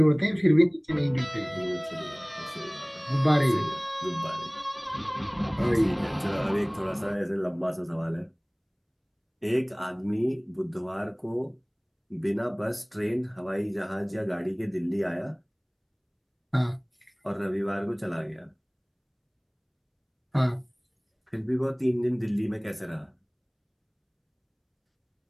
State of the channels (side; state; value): both; identical; correlation 1.00